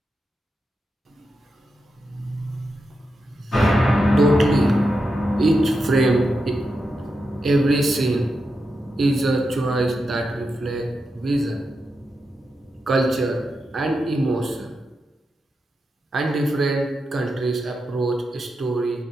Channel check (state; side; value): normal; both; correlation 0.87